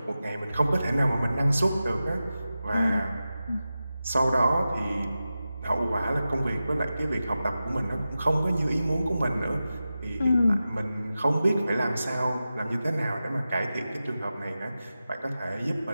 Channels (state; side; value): inverted; both; correlation -0.93